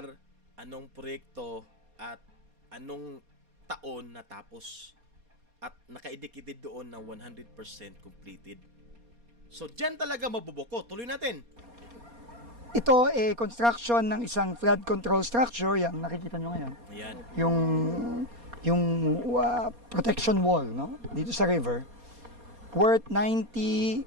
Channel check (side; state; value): left; late; 4.2 ms